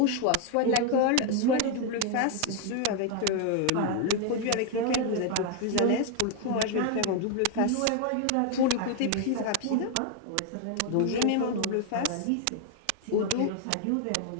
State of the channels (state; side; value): different; both; correlation 0.00